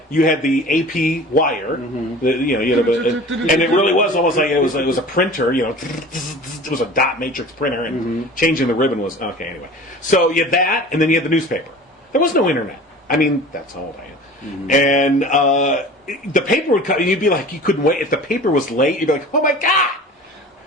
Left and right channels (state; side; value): normal; both; correlation 0.40